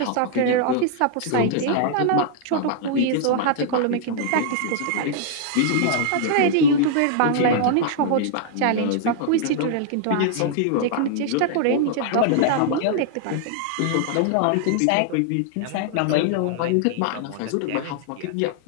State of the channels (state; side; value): different; both; correlation -0.01